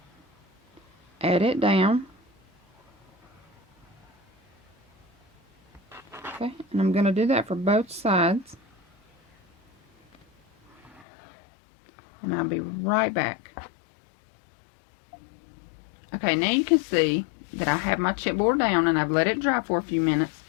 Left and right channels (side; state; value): right; drops out; at 11.1 s